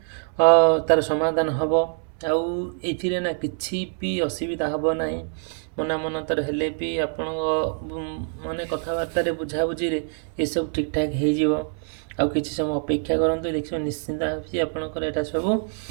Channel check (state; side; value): silent; left; 62 dB below the other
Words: ତା'ର ସମାଧାନ ହେବ। ଆଉ ଏଇଥିରେ ନା କିଛି ବି ଅସୁବିଧା ହେବ ନାହିଁ। ମନାନ୍ତର ହେଲେ ବି ଆପଣଙ୍କ ମାନେ କଥାବାର୍ତ୍ତାରେ ବୁଝାବୁଝିରେ ଏସବୁ ଠିକ୍ଠାକ୍ ହେଇଯିବ। ଆଉ କିଛି ସମୟ ଅପେକ୍ଷା କରନ୍ତୁ, ଦେଖିବେ ନିଶ୍ଚିନ୍ତ ଆପଣଙ୍କର ଏଇଟା ସବୁ